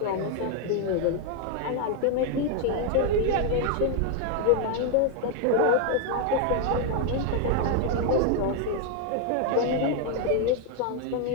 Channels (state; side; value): different; both; correlation 0.01